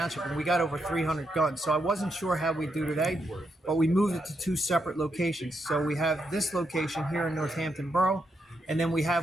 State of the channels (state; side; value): normal; both; correlation 0.81